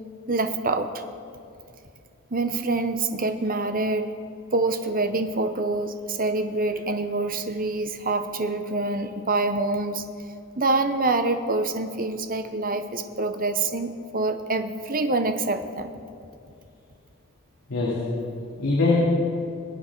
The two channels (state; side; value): normal; both; correlation 0.12